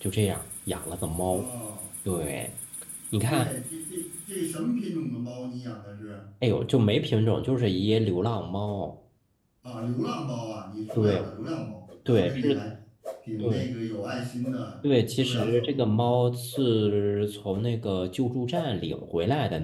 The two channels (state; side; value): identical; both; correlation 1.00